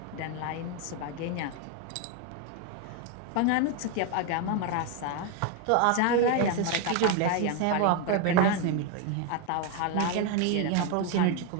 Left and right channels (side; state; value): both; different; correlation 0.01